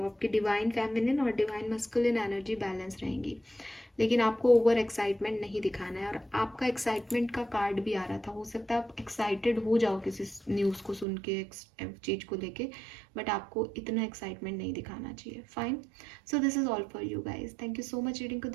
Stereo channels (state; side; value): drops out; left; at 11.1 s